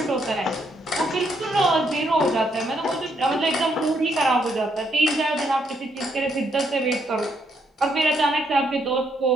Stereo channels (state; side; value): normal; both; correlation 0.74